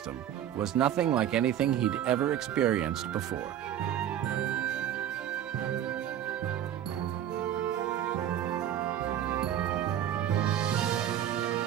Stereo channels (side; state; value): left; quieter; 10.6 dB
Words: was nothing like anything he'd ever experienced before.